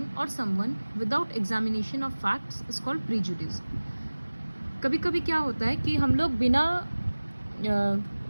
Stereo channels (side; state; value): both; inverted; correlation -1.00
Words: or someone without examination of facts is called prejudice. कभी कभी क्या होता है कि हम लोग बिना